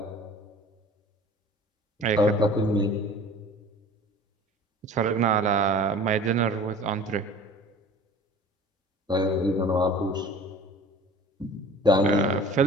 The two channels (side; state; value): both; normal; correlation 0.44